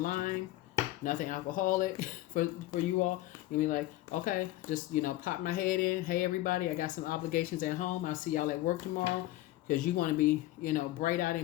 nothing alcoholic for you all. You'll be like, okay, just, pop my head in. Hey, everybody, I got some obligations at home. I'll see y'all at work tomorrow. Because you want to be, bright-eyed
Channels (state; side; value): quieter; right; 16.4 dB